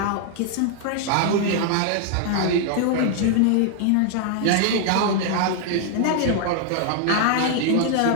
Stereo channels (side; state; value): both; different; correlation 0.00